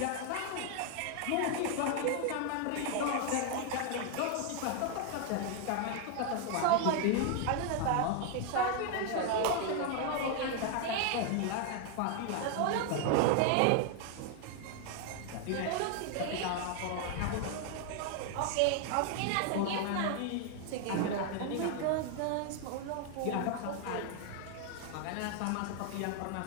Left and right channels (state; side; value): different; both; correlation 0.00